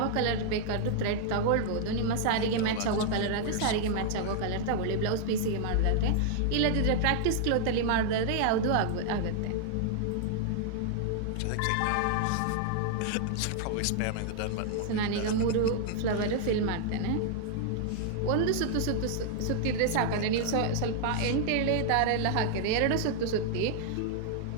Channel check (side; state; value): both; different; correlation -0.01